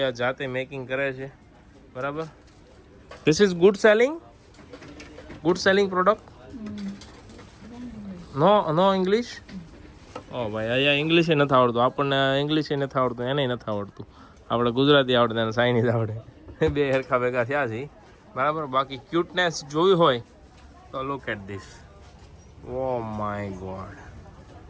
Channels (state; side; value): identical; both; correlation 1.00